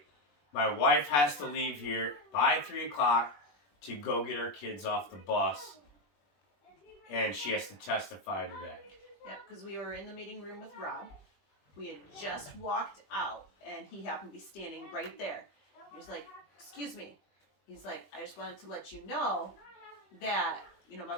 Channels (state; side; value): late; right; 21 ms